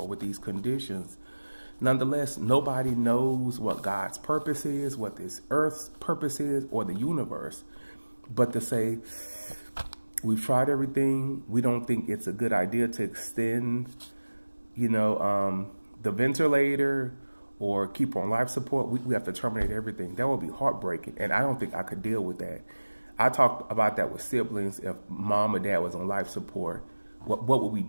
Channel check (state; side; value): inverted; both; correlation -1.00